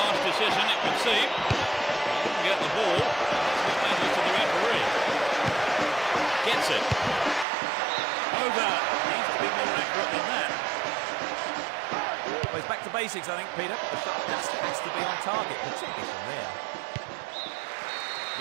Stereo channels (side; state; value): left; drops out; at 7.5 s